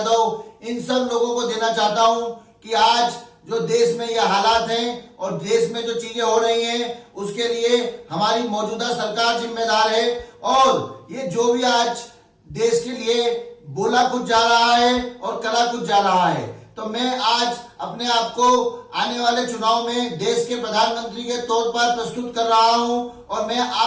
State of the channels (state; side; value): identical; both; correlation 1.00